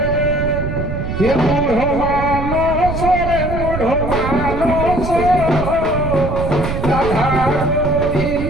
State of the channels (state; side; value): noise; right; rumble, 4 dB below the sound